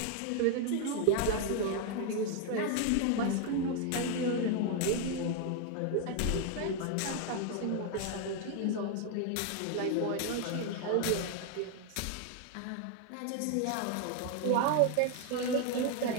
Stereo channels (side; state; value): both; different; correlation 0.00